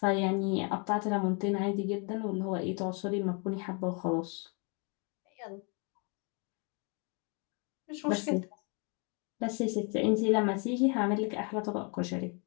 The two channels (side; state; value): right; quieter; 34.8 dB